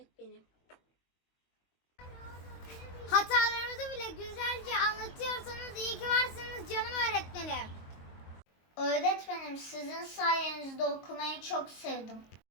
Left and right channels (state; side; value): late; right; 22 ms